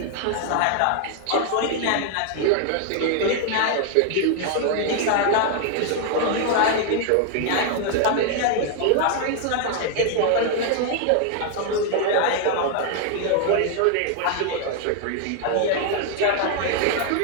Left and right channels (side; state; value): both; different; correlation 0.00